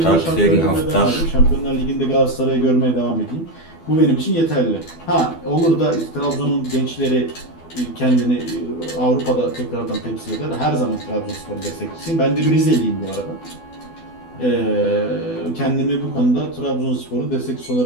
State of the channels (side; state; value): right; late; 12 ms